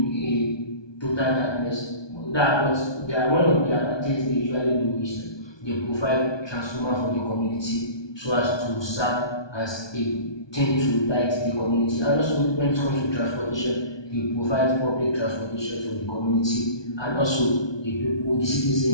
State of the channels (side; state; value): right; late; 1.2 ms